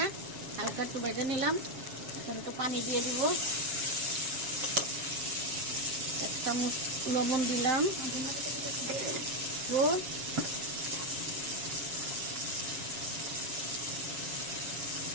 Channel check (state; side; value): late; left; 7.2 ms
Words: হালকা একটু ভেজে নিলাম। এখন একটু পানি দিয়ে দিব, 1 চামচ লবণ দিলাম,